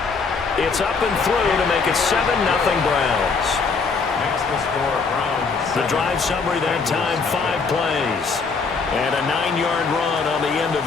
It's up and through to make it 7-0 Browns. Makes the score Browns. The drive summary that time, 5 plays. And a 9-yard run on the end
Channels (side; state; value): right; quieter; 4.8 dB